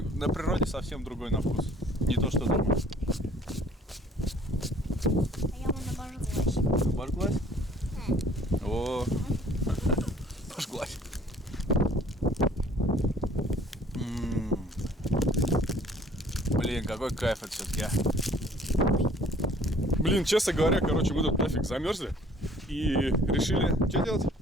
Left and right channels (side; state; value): both; normal; correlation 0.55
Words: на природе совсем другой на вкус. Не то, что дома. А я вон обожглась. Обожглась? О, обожглась. Блин, какой кайф это все-таки, а. Блин, честно говоря, короче, мы тут нафиг замерзли и решили, что делать?